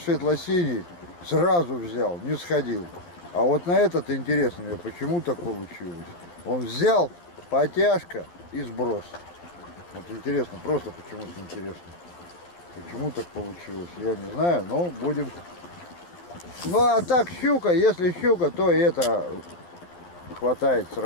сразу взял, не сходил. А вот на этот интересно мне, почему так получилось. Он взял, потяжка и сброс. Вот интересно, просто почему-то интересно. Почему так получилось, я не знаю, но будем. Ну а так щука, если щука, то и это хватает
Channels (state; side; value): late; right; 12 ms